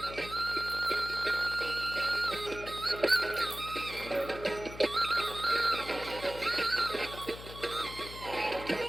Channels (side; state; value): left; noise; hum, 13 dB below the sound